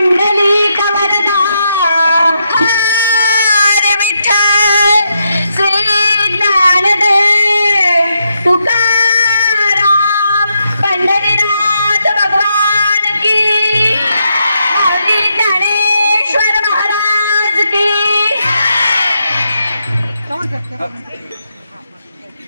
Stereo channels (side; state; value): both; inverted; correlation -0.81